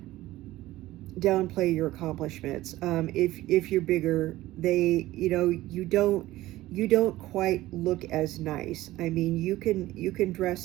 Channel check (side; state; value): left; quieter; 16.6 dB